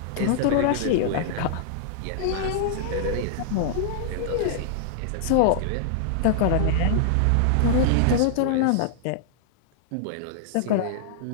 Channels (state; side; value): different; both; correlation -0.01